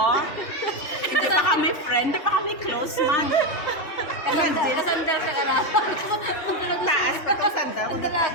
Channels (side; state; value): right; late; 3.4 ms